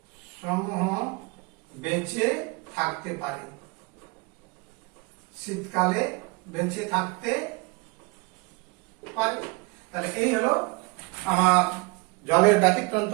বেঁচে থাকতে পারে। শীতকালে বেঁচে থাকতে পারে। তাহলে এই হলো আমার জলের ব্যতিক্রান্ত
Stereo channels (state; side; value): quieter; left; 28.6 dB